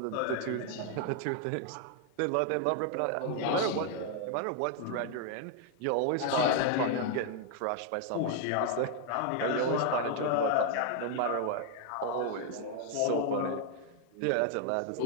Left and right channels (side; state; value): both; different; correlation 0.00